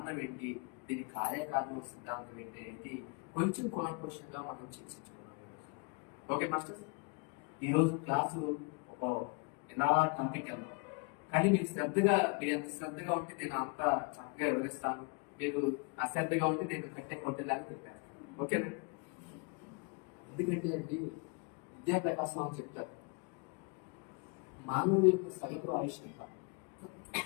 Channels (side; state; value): right; quieter; 32.4 dB